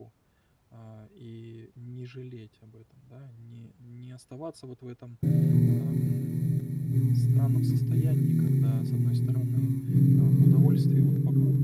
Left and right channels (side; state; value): both; identical; correlation 1.00